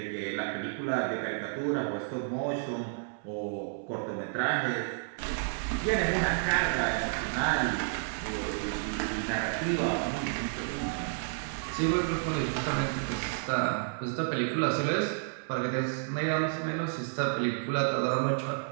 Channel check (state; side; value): silent; left; 57 dB below the other